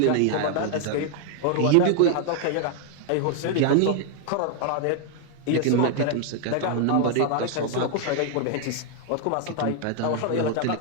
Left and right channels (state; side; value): different; both; correlation 0.00